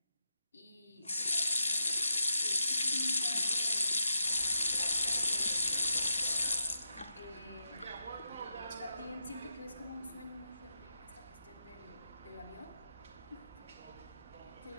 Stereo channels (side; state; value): both; inverted; correlation -0.84